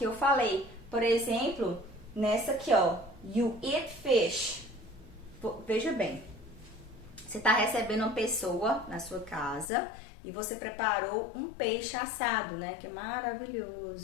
eu falei. Por exemplo, nessa aqui, ó, you eat fish. Veja bem, você tá recebendo uma pessoa na sua casa e você preparou um peixe assado, né? Que é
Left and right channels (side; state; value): right; drops out; at 9.7 s